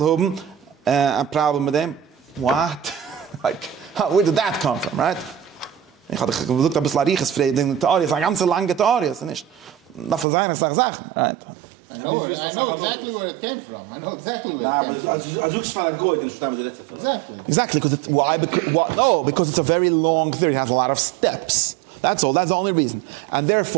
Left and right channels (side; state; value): left; drops out; at 10.2 s